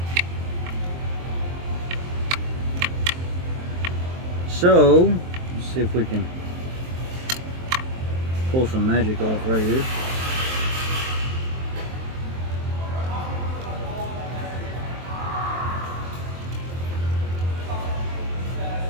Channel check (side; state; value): left; late; 23 ms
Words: So, let's see if we can pull some magic off right here.